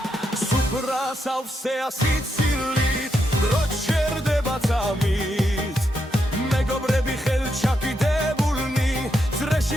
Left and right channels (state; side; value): normal; both; correlation 0.82